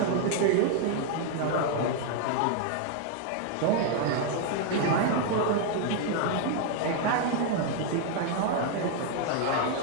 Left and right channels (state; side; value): different; both; correlation 0.00